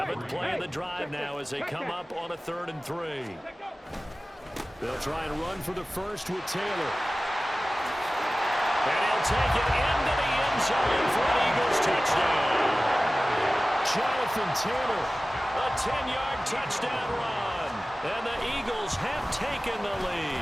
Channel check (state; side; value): normal; both; correlation 0.97